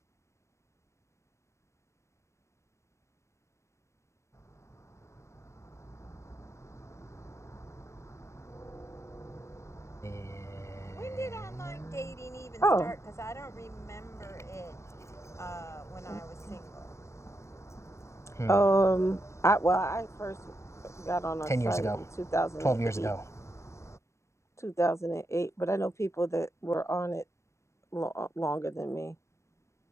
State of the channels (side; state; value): right; late; 0.14 ms